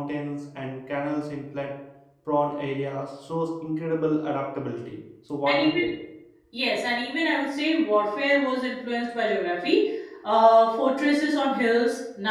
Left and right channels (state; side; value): identical; both; correlation 1.00